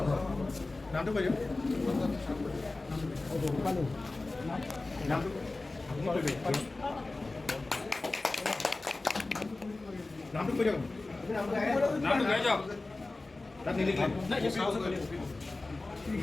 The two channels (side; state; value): right; quieter; 3.2 dB